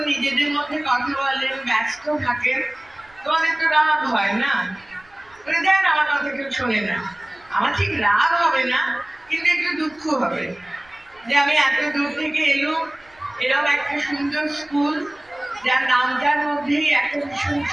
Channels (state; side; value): noise; right; rumble, 30 dB below the sound